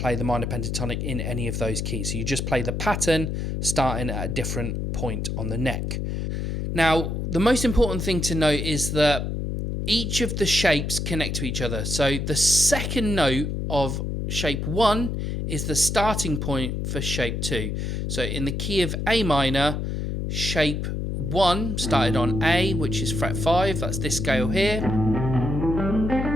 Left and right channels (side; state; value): left; noise; hum, 2 dB below the sound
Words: the minor pentatonic in any of those keys. So you just play the pattern starting at a different point on the neck. Now, the most important thing to note is that each of the shapes connect to each other. So the second note of shape 1 is the starting point for shape 2. So in the key of A minor, shape 1 started on A, which is fret 5, that's this scale here.